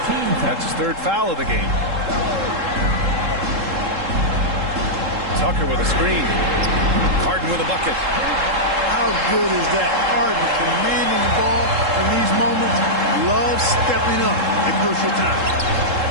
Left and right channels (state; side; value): late; left; 3.7 ms